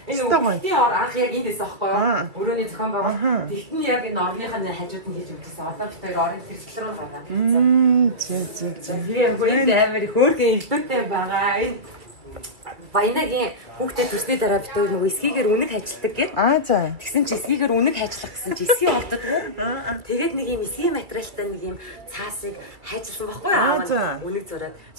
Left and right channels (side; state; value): left; late; 2.3 ms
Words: энэ үгтийн анх яг эндээс аахгүй юу? Өрөөний зохион байгуулалт тэгтэн яг энэ орныхаа хажууд нь хийж өгсөн. Одоо бид хоёр орон хэрэгсэл рүү гараад ирсэн. Тэгээд бүрийн амар их хөөрхөн илүүтэй байгаа. Энэ баянагийн хүүхдэд төсний дараа бид хоёр нөгөө эсгийгээр үнэг хажилдаг гэд. За. Тэгсэн чи эсгийгээр үнэг хажлах гэсэн чи эсгий олддоггүй. Тэгээд нэг юм эсгий материалтай нэг юм цаасыг хажилсан байхгүй аа. Үнэг зураад.